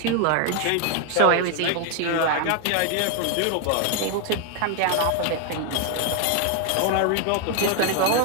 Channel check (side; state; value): both; different; correlation 0.01